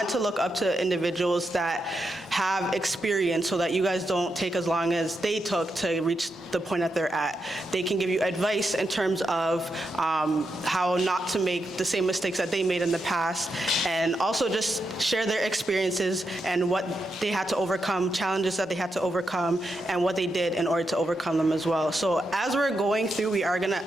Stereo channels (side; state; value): both; normal; correlation 0.84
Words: to look up to individuals that have experience so that you guys don't take as long as they took to reach the point that they're at. They can give you advice in terms of how not to make the same mistakes that they made in the past, and also just share their experiences and what they had to overcome, challenges that they had to overcome, and what they did in order to overcome them as well. So as we're going through,